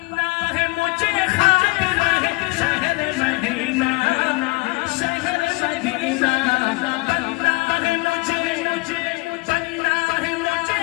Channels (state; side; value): quieter; right; 26.0 dB